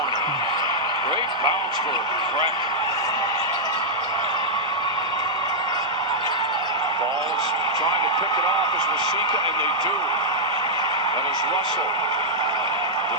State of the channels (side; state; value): both; normal; correlation -0.07